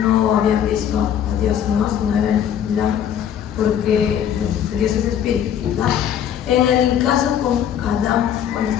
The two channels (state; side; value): quieter; right; 9.5 dB